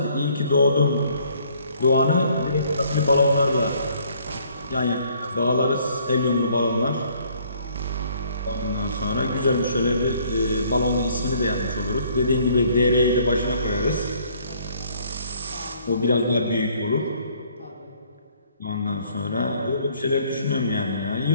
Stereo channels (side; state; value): both; inverted; correlation -0.62